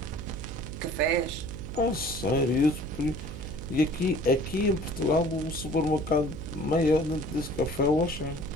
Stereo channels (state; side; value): noise; right; hum, 9 dB below the sound